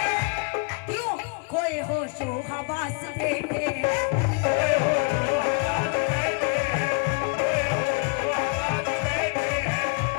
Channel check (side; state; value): right; quieter; 36.7 dB